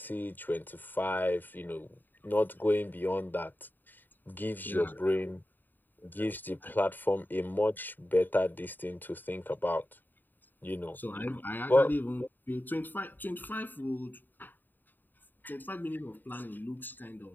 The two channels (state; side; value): late; right; 0.090 ms